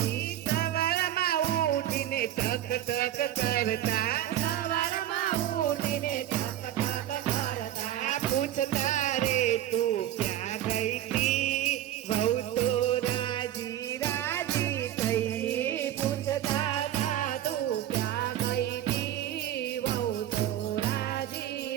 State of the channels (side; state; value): left; quieter; 12.4 dB